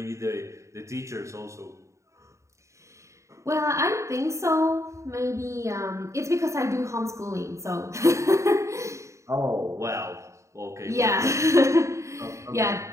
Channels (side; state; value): left; late; 0.14 ms